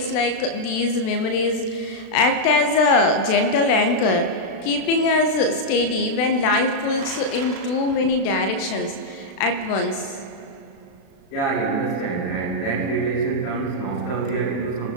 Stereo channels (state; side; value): late; right; 36 ms